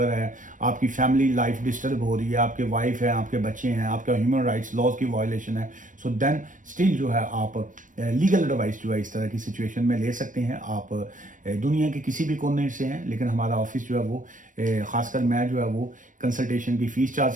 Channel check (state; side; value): late; left; 0.38 ms